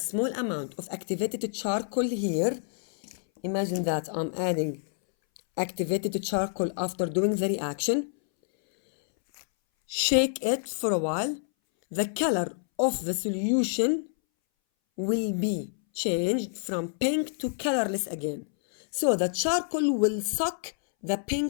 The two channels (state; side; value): silent; right; 59 dB below the other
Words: amount of activated charcoal here, imagine that I'm adding activated charcoal after doing the reaction, shake it for a while, the color of the solution will be changed from pink to colorless again. So the charcoal will suck the